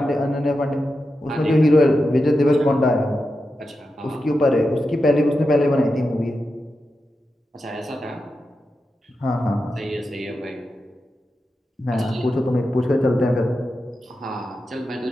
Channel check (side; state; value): both; normal; correlation 0.89